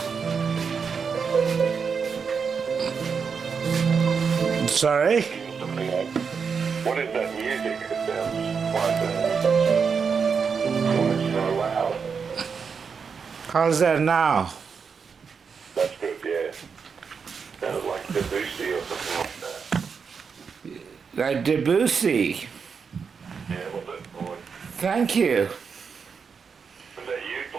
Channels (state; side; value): quieter; left; 5.9 dB